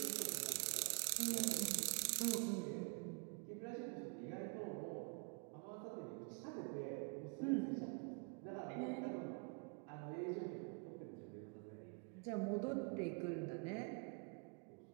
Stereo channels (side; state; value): left; quieter; 34.7 dB